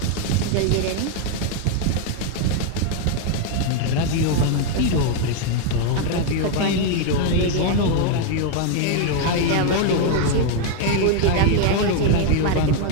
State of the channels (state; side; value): different; both; correlation 0.01